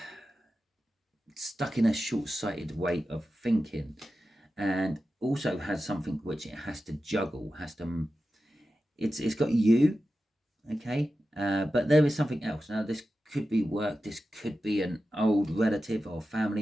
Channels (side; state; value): both; normal; correlation 0.93